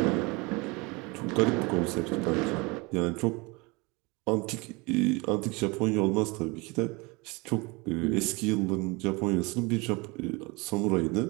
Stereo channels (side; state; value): left; quieter; 26.5 dB